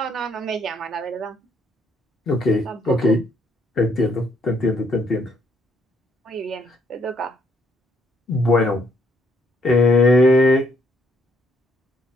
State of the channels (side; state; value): both; normal; correlation 0.70